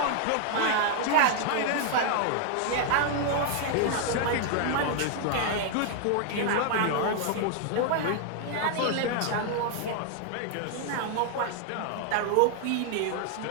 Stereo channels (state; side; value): different; both; correlation 0.00